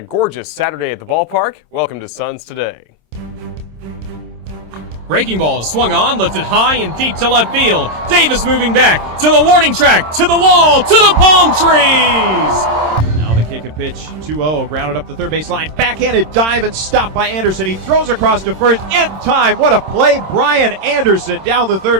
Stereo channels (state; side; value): late; left; 26 ms